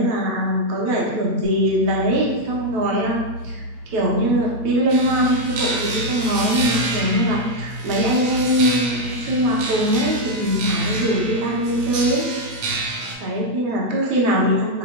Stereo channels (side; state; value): left; late; 9.0 ms